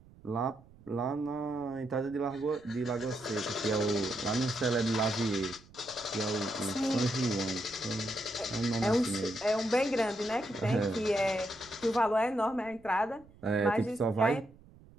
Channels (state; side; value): noise; right; rumble, 24 dB below the sound